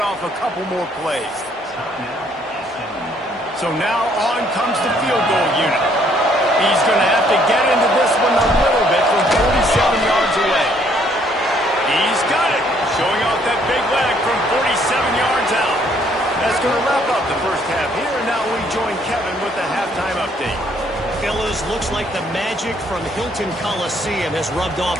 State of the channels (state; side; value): normal; both; correlation 0.65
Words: off a couple more plays. So now on comes the field goal unit. He's going to have to get into this one a little bit from 47 yards away. He's got it. Showing off that big leg from 47 yards out. That's going to wrap up the 1st half here. And now we join Kevin with the halftime update. Fellas, looks like the magic from Hilton Coliseum has rubbed off